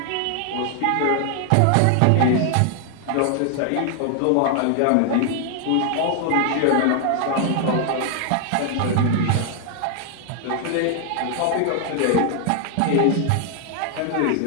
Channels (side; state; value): both; different; correlation 0.00